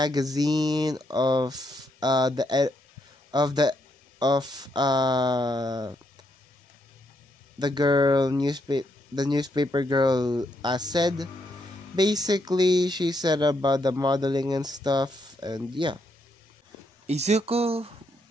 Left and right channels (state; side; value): normal; both; correlation 0.77